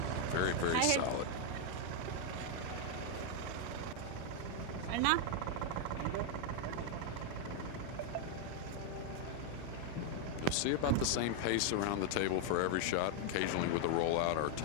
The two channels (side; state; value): both; different; correlation 0.00